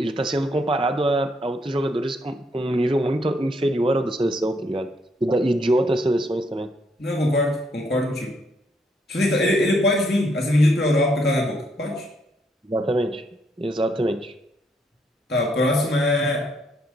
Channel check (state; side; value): normal; both; correlation 0.73